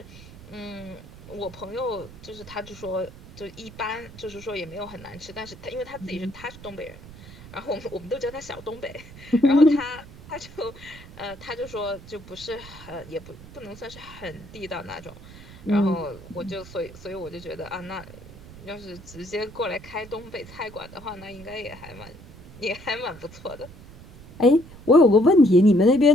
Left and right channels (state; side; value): noise; right; rumble, 18 dB below the sound